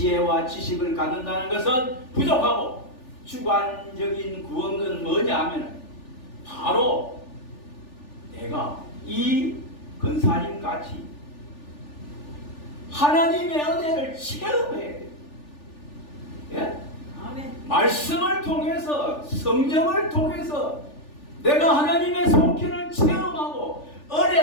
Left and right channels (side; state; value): right; late; 3.4 ms